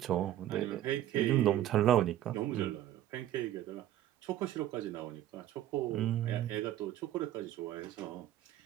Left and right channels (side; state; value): left; quieter; 12.6 dB